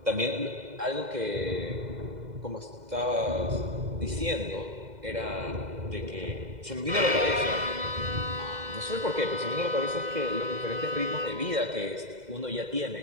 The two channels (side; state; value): left; late; 2.0 ms